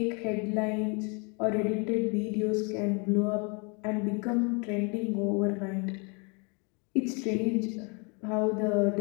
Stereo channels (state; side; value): quieter; right; 33.0 dB